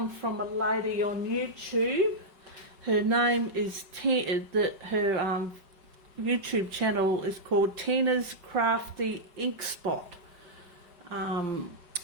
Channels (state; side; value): late; left; 5.2 ms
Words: from a lady on YouTube. Her name is her YouTube channel is called Tina's Crafty Ink Spot.